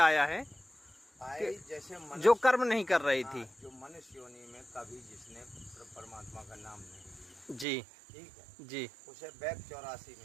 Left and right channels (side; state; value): left; drops out; at 7.7 s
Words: है जैसे जो कर्म नहीं कर रही थी। जो मनुष्य योनि में कभी जिसने परमात्मा का नाम नहीं लिया, जी। ठीक है जी। उसे बैक 84